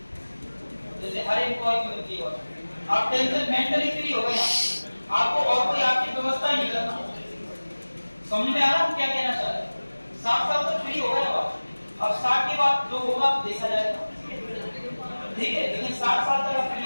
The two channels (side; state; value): both; inverted; correlation -1.00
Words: जैसे हर एम्प्लॉय की मिलती है। आप टेंशन मेंटली फ्री हो गए, आपको और कोई आपकी व्यवस्था नहीं करना। समझ में आ रहा हम क्या कहना चाह रहे हैं? 7 साल तक फ्री हो गए आप, अब 60 के बाद जो होगा देखा जाएगा, ठीक है। लेकिन 60 साल तक आप फ्री